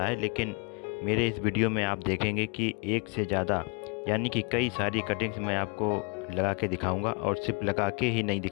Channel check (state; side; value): quieter; right; 33.5 dB